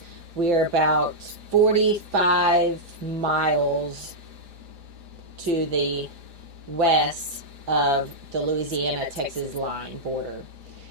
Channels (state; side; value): late; left; 4.9 ms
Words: We are about 45 miles to the west of the Louisiana-Texas line border.